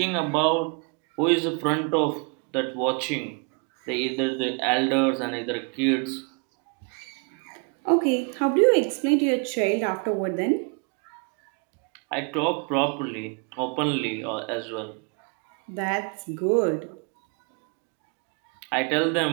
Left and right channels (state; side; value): quieter; left; 36.2 dB